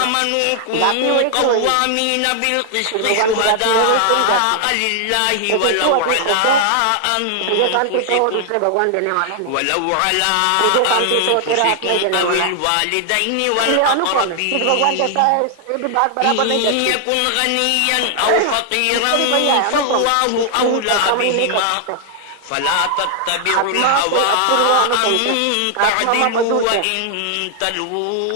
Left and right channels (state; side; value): different; both; correlation 0.00